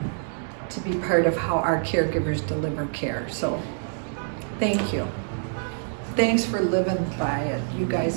to be part of how our caregivers deliver care. So thank you. Thanks for living by it. You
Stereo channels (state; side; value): silent; left; digital silence